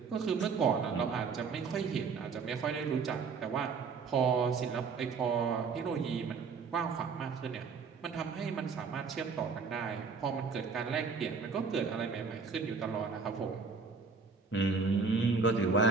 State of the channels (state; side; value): quieter; left; 5.0 dB